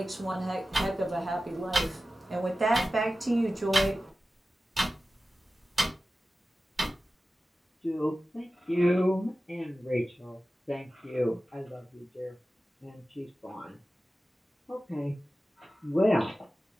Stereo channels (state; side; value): normal; both; correlation 0.95